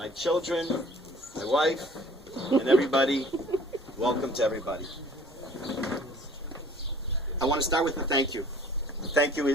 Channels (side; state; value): both; normal; correlation 0.51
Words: children, my wife, and everybody. Welcome to everybody. I want to start with a thank you. The thank you